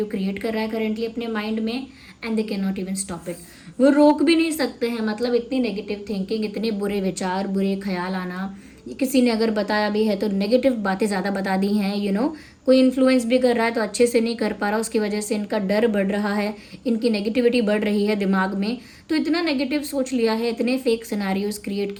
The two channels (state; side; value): identical; both; correlation 1.00